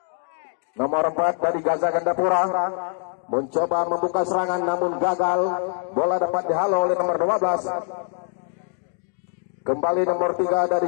Nomor 4 dari Gaza Gandapura mencoba membuka serangan namun gagal. Bola dapat dihalau oleh nomor 12. Kembali nomor 3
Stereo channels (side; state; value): right; silent; 63 dB below the other